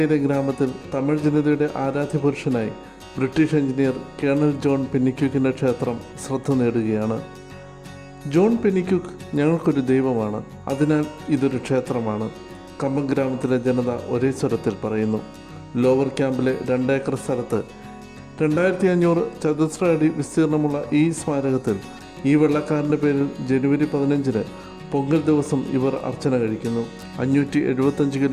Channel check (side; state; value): both; identical; correlation 1.00